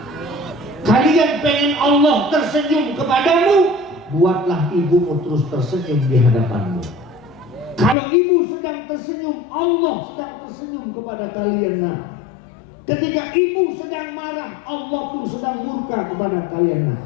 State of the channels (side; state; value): right; drops out; at 8.0 s